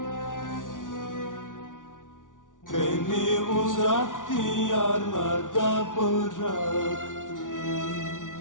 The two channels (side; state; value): right; late; 0.88 ms